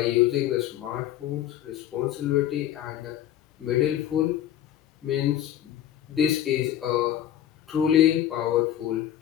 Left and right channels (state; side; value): quieter; right; 11.5 dB